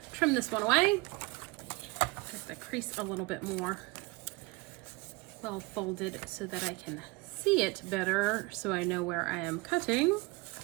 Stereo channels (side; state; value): left; quieter; 24.0 dB